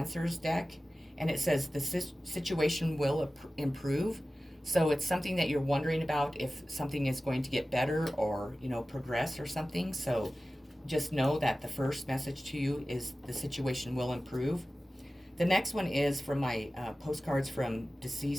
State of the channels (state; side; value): normal; both; correlation 0.96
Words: deck, and it says the situation will improve. So it's something that you're wondering about, if something is going to get better or, progress or something. So just know that the first message to you is the situation will improve. The next one is from my postcards from